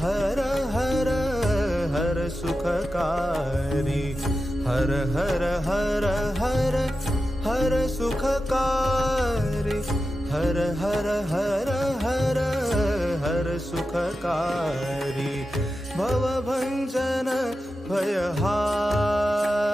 हर हर हर सुखकारी हर हर हर हर हर सुखकारी हर हर हर हर हर सुखकारी भवभञ्जन भयहारी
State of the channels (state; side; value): normal; both; correlation 0.91